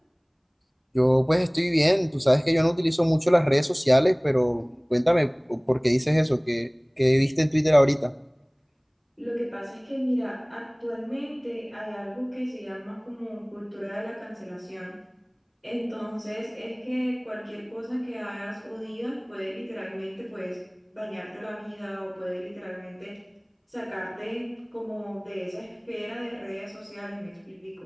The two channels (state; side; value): identical; both; correlation 1.00